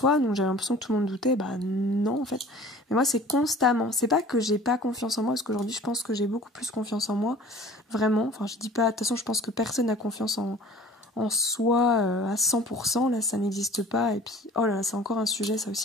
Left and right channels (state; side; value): normal; both; correlation 0.46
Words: donc j'avais l'impression que tout le monde doutait, non en fait. Mais moi c'est constamment, c'est pas que j'ai pas confiance en moi, parce qu'aujourd'hui je pense que j'ai beaucoup plus confiance en moi, vraiment, je dis pas, de toute façon je pense que personne n'a confiance en soi à 100%, là ça n'existe pas, et puis oh là là, c'est encore un sujet ça